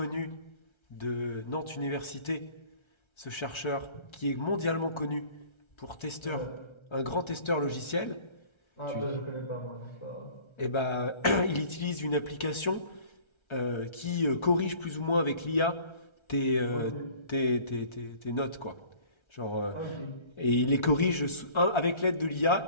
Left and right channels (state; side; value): late; right; 1.3 ms